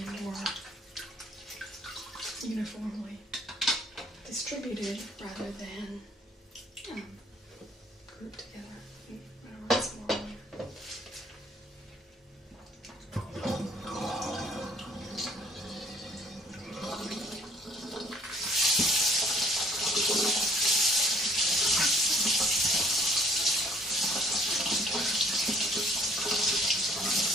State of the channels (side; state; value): both; normal; correlation 0.58